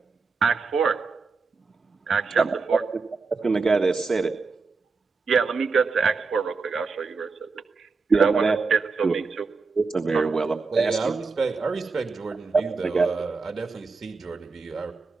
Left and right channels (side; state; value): left; quieter; 4.5 dB